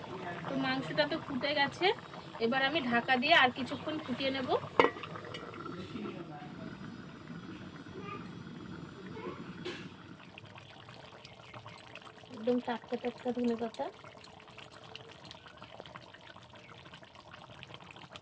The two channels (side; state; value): both; identical; correlation 1.00